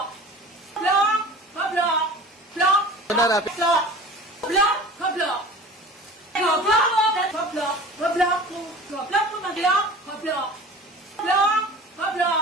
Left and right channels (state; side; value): normal; both; correlation 0.40